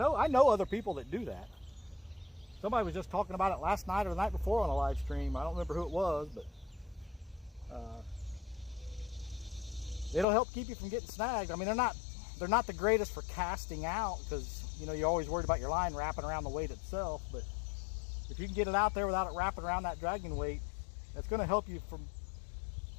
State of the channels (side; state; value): right; drops out; at 10.2 s